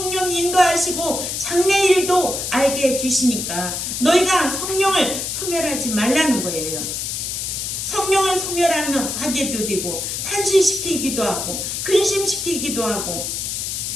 인도하시고 장래일도 알게 해주시니까 너희가 성령을 소멸하지 말라는 거예요. 성령을 소멸하면 화제도 되고 탄식시키기도 하고 근심시키기도 하고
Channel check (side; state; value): left; noise; hiss, 3 dB below the sound